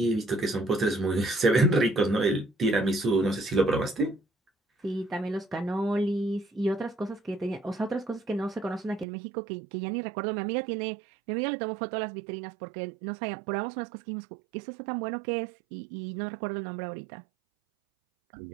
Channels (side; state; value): left; drops out; at 9.1 s